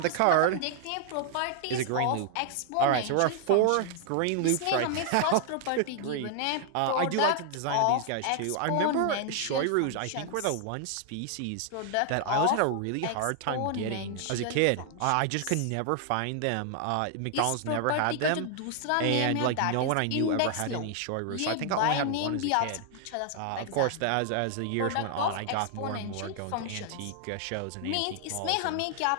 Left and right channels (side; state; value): both; different; correlation 0.00